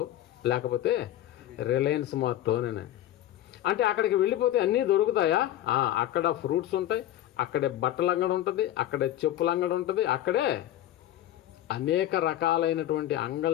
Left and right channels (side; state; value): right; quieter; 13.0 dB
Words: లేకపోతే రిలయన్స్ మార్టో అని. అంటే అక్కడికి వెళ్ళిపోతే అన్నీ దొరుకుతాయా? అక్కడ ఫ్రూట్స్ ఉంటాయి, అక్కడే బట్టల అంగడి ఉంటుంది, అక్కడే చెప్పుల అంగడి ఉంటుంది, అక్కడే అనేక రకాలైనటువంటి